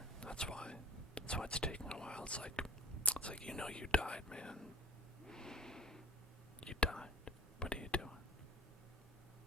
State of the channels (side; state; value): both; normal; correlation 0.49